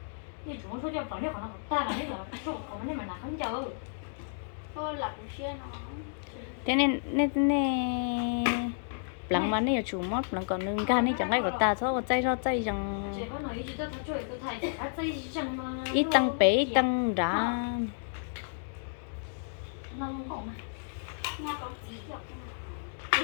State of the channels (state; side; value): silent; right; digital silence